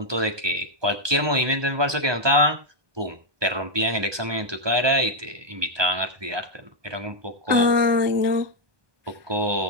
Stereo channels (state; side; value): late; left; 1.2 ms